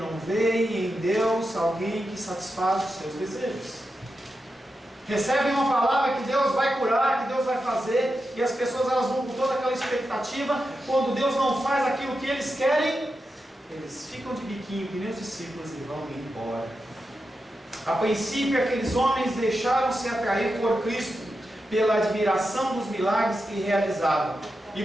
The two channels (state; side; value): normal; both; correlation 0.89